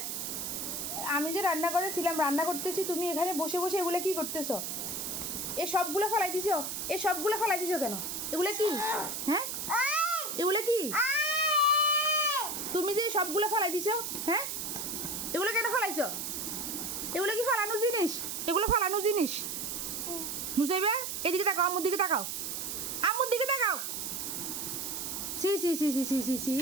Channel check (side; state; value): right; noise; hiss, 4 dB below the sound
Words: আমি যে রান্না করেছিলাম, রান্না করতেছি, তুমি এখানে বসে বসে এগুলো কি করতেছো? এ সবগুলো ফেলাই দিছো? এ সবগুলো ফেলাই দিছো কেন? এগুলো কি? হ্যাঁ, এগুলো কি? তুমি যে সবগুলো ফেলাই দিছো, হ্যাঁ, এগুলো কেন ফেলাইছো? এগুলো কি ফালানো জিনিস? এগুলো ফালানো জিনিস? নুসাইবা এদিকে তাকাও, আম্মুর দিকে তাকাও, আম্মুর দিকে তাকাও। সি সি সি সি সি সি সি